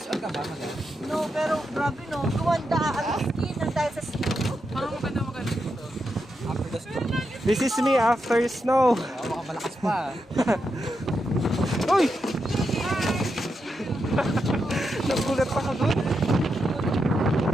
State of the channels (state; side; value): normal; both; correlation 0.85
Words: out ka ba? No, pero grabe no. Kumanda ang skin ng dahil sa snow. Parang maganda dito. After the snow. This is me after snow. Baka malakas pa. Uy! Nagulat pa ka doon.